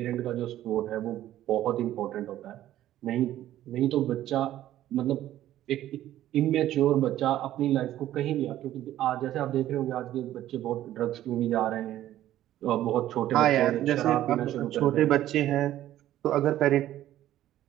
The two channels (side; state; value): left; quieter; 13.2 dB